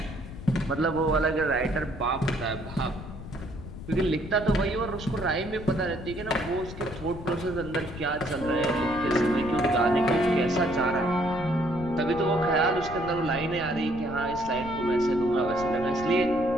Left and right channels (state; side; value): noise; left; rumble, 12 dB below the sound